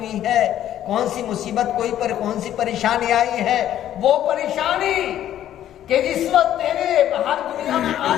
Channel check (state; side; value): quieter; right; 11.6 dB